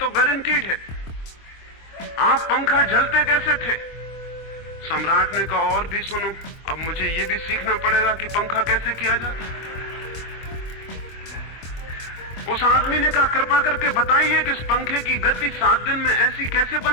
गारंटीड है, आप पंखा जलते कैसे थे। सम्राट ने कहा और भी सुनो, अब मुझे ये भी सीखना पड़ेगा कि पंखा कैसे किया जाता। उस आदमी ने कहा कृपा करके बताइए कि इस पंखे की गति 7 दिन में ऐसी कैसे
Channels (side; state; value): right; late; 24 ms